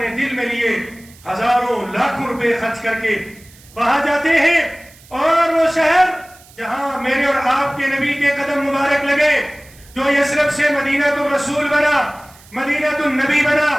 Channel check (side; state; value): right; noise; hiss, 25 dB below the sound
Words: دل میں لیے ہزاروں لاکھوں روپے خرچ کر کے وہاں جاتے ہیں، اور وہ شہر جہاں میرے اور آپ کے نبی کے قدم مبارک لگے، جو یثرب سے مدینہ الرسول بنا، مدینہ النبی بنا،